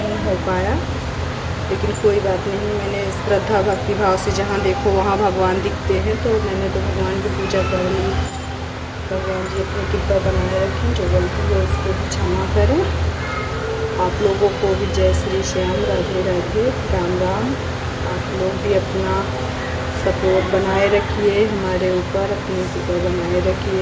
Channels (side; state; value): both; identical; correlation 1.00